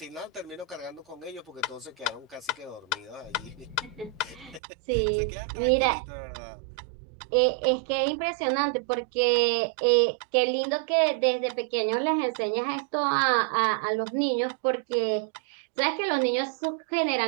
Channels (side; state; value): left; drops out; at 4.6 s